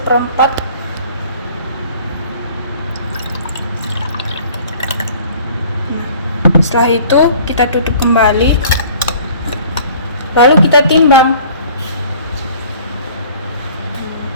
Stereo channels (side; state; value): both; inverted; correlation -0.50